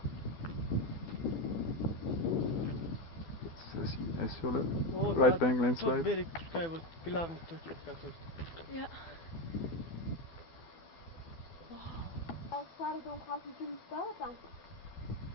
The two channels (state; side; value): late; right; 12 ms